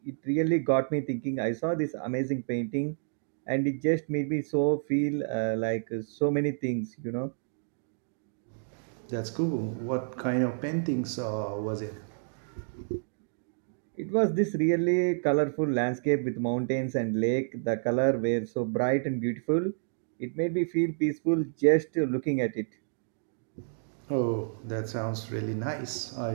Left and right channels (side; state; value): left; silent; digital silence